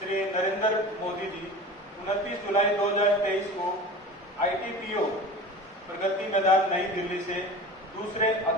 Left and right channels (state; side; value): normal; both; correlation 0.35